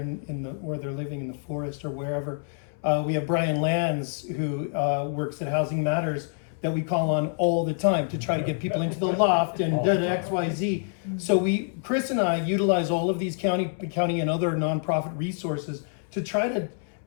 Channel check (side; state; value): right; silent; 60 dB below the other